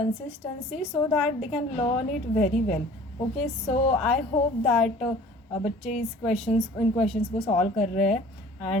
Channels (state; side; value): normal; both; correlation 0.48